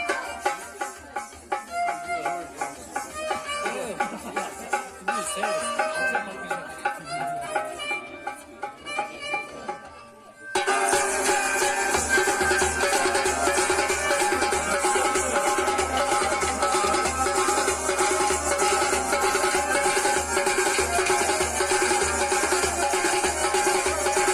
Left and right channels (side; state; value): both; identical; correlation 1.00